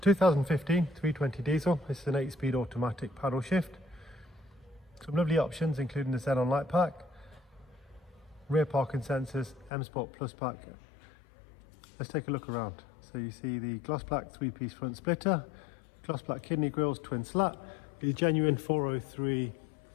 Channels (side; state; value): right; drops out; at 9.7 s